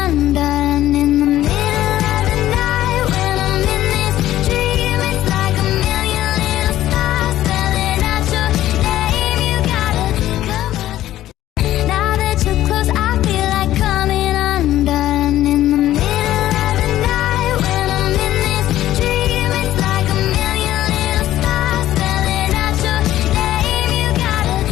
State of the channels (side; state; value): right; quieter; 13.7 dB